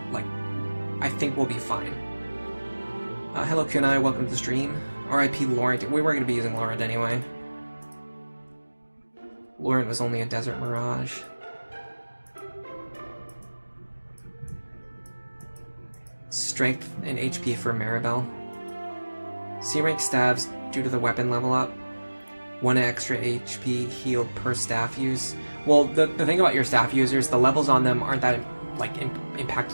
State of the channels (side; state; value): both; inverted; correlation -1.00